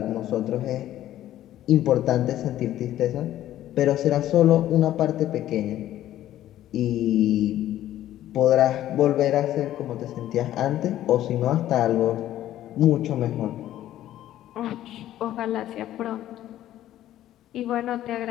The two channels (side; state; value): right; quieter; 13.0 dB